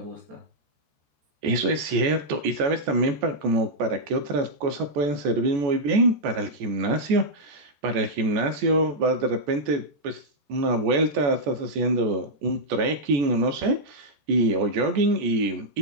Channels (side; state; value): left; late; 14 ms